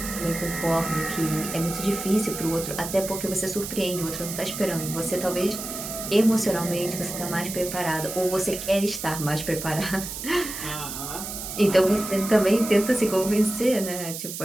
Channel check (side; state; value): right; noise; hiss, 7 dB below the sound